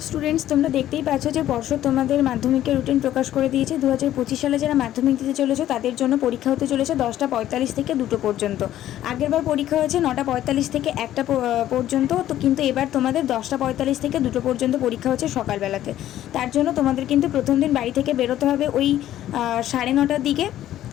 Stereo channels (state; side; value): quieter; right; 12.7 dB